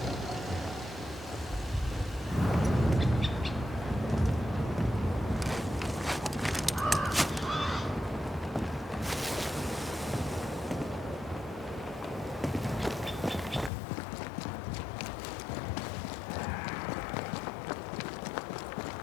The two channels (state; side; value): drops out; right; at 13.7 s